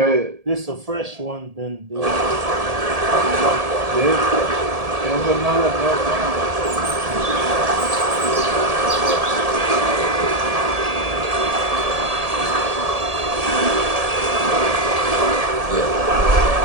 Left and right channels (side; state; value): left; late; 1.7 ms